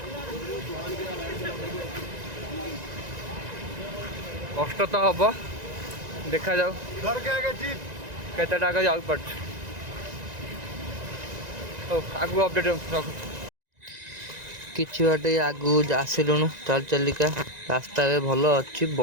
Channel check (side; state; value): left; late; 1.9 ms